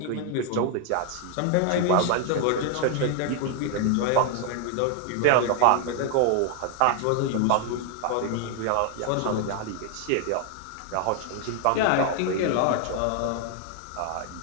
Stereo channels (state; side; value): different; both; correlation 0.00